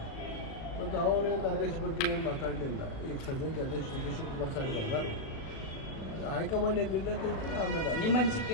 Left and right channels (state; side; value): late; right; 37 ms